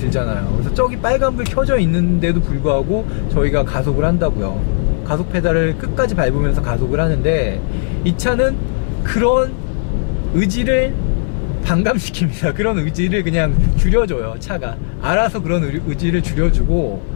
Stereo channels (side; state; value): right; silent; 62 dB below the other